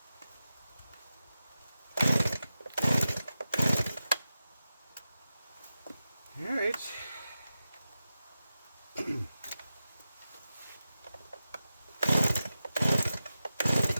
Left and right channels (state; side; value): inverted; both; correlation -0.92